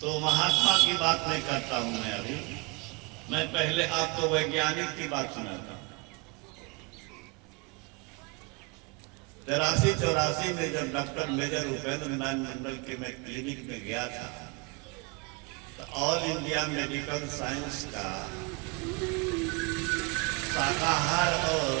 तो महात्मा की बात नहीं करता हूं मैं अभी, मैं पहले आपको वैज्ञानिक की बात सुनाता हूं। 83-84 में जब डॉक्टर मेजर उपेंद्र नारायण मंडल के मैं क्लिनिक में गया था, तो ऑल इंडिया मेडिकल साइंस का शाकाहार और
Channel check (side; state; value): left; quieter; 27.6 dB